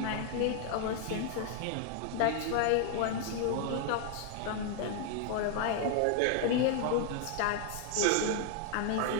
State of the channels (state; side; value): different; both; correlation 0.00